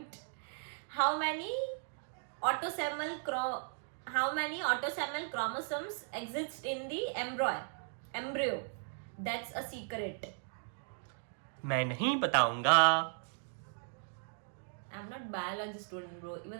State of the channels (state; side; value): silent; left; digital silence